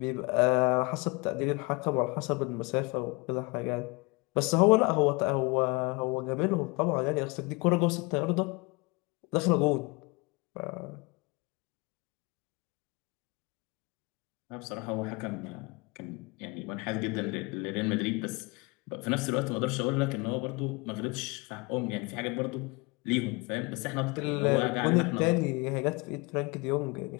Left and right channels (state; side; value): quieter; right; 27.1 dB